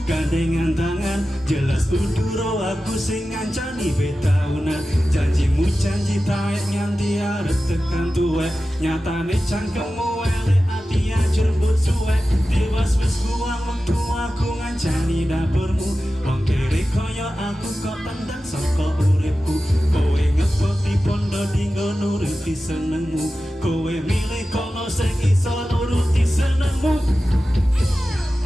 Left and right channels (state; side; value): normal; both; correlation 0.94